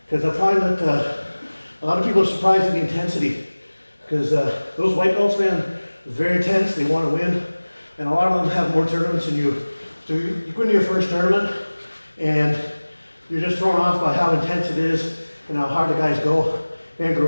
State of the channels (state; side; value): inverted; both; correlation -1.00